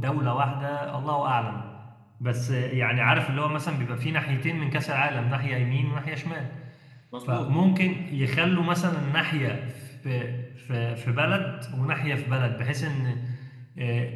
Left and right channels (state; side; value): identical; both; correlation 1.00